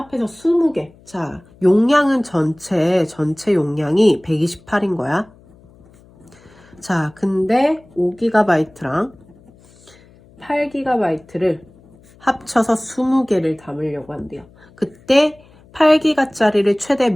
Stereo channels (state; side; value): noise; left; hum, 27 dB below the sound